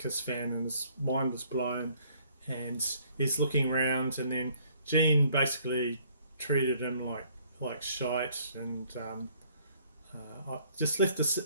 fan, and his mind was blown, and he's looking around, and then Gene basically treated him like shite, and I just left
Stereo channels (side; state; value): both; inverted; correlation -0.62